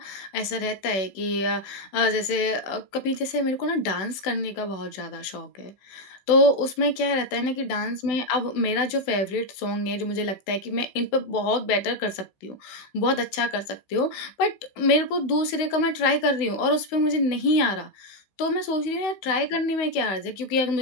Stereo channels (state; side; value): late; right; 16 ms